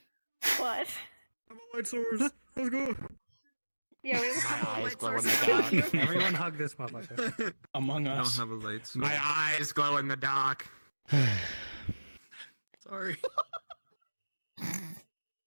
But Light source. Let's go. yeah, we have a couple of eyes light glow in sources. the dark. Everyone hug this motherfucker. Among I Us. don't have a light source. My eyes glow in the dark. Sorry.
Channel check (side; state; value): both; inverted; correlation -1.00